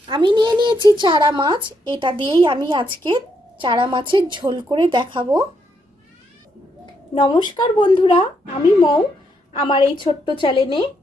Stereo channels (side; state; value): both; normal; correlation 0.77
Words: আমি নিয়ে নিয়েছি চারা মাছ। এটা দিয়েই আমি আজকে চারা মাছের ঝোল করে দেখাবো। নমস্কার বন্ধুরা, আমি মৌ। আমার এই ছোট্ট চ্যানেলে